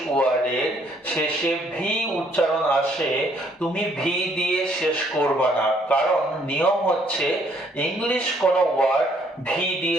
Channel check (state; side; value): normal; both; correlation 0.66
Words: ওয়ার্ডের শেষে ভি উচ্চারণ আসে, তুমি ভি দিয়ে শেষ করবে না, কারণ নিয়ম হচ্ছে ইংলিশ কোনো ওয়ার্ড ভি